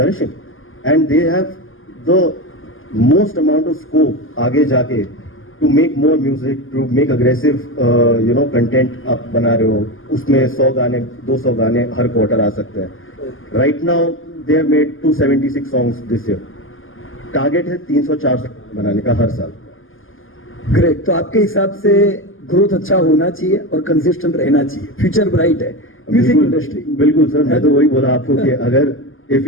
and they have the most amount of scope आगे जाके to make more music, to make aggressive you know content. आप बना रहे हो, उसमें 100 गाने 200 गाने हर क्वार्टर आ सकते हैं. Right now they have made 276 songs this year. Target है 300-400 बनाने का हर साल. ग्रेट. तो आपके हिसाब से ग्रोथ अच्छा होना चाहिए और कंसिस्टेंट रहना चाहिए. फ्यूचर ब्राइट है म्यूजिक इंडस्ट्री. बिल्कुल सर, मैं तो वही बोला आपको कि अगर if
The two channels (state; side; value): late; right; 0.59 ms